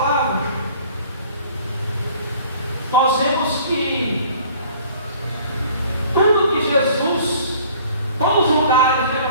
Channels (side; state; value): both; inverted; correlation -0.52